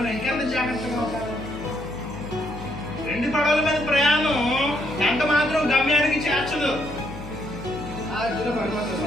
ఇంకెంత జాగ్రత్తగా ఉండాలి. 2 పడవల మీద ప్రయాణం ఎంత మాత్రం గమ్యానికి చేర్చదు. అదిలో పడిపోతుంది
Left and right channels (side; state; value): left; noise; hum, 13 dB below the sound